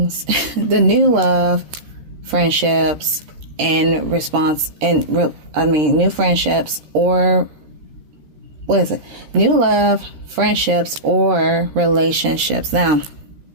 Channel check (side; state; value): left; late; 13 ms